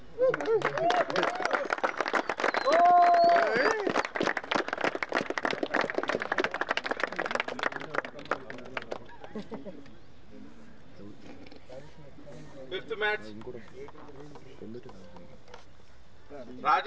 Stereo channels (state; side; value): identical; both; correlation 1.00